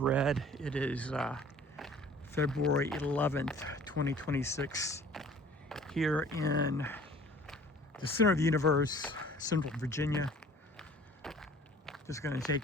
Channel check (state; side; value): normal; both; correlation 0.50